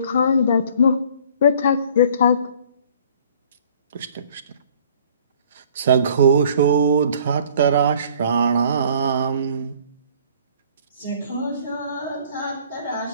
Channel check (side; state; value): both; inverted; correlation -0.55